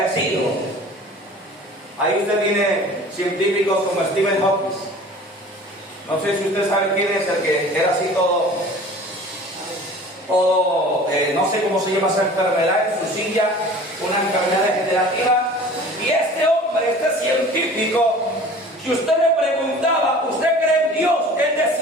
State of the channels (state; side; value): normal; both; correlation 0.44